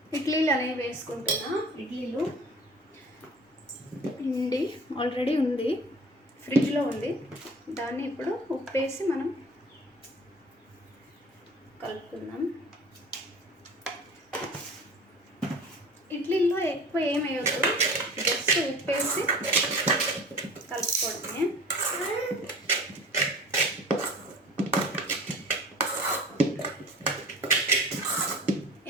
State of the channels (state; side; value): normal; both; correlation 0.42